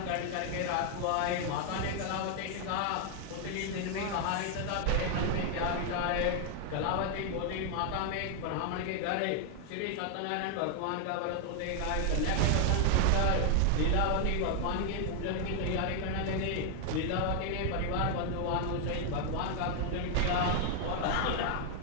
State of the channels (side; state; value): both; different; correlation 0.00